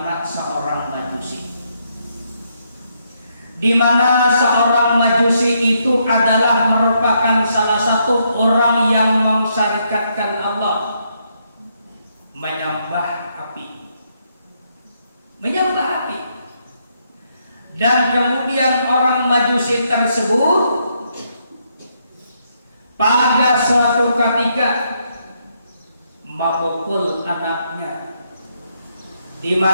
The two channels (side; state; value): both; inverted; correlation -0.76